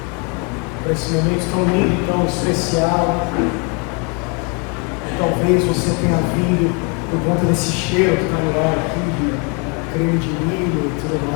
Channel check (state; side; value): quieter; right; 33.7 dB